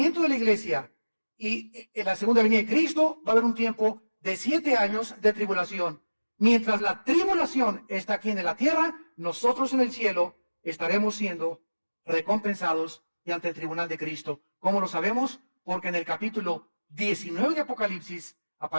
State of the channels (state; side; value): inverted; both; correlation -1.00